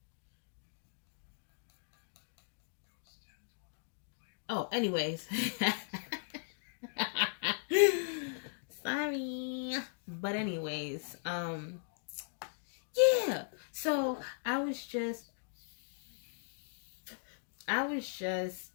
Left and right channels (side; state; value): right; silent; digital silence